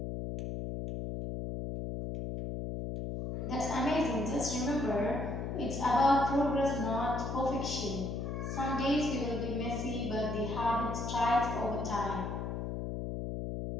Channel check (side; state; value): left; noise; hum, 4 dB below the sound